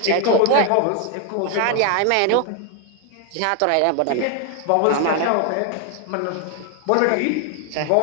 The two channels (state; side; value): different; both; correlation 0.00